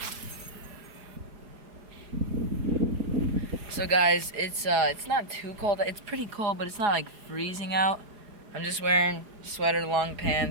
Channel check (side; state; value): left; late; 4.9 ms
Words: So guys, it's not too cold. It's pretty cold, but it's not like freezing out. I'm just wearing sweater, long